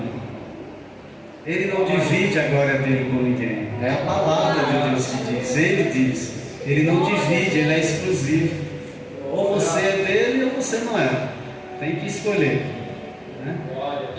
Ele não divide a glória dele com ninguém, é a palavra de Deus que diz, ele diz, ele não divide, ele é exclusivo. Ou você é dele ou você não é, tem que escolher, né?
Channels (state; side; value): identical; both; correlation 1.00